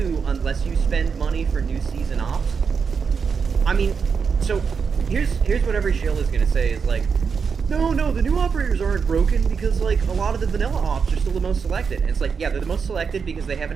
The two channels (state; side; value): quieter; left; 5.9 dB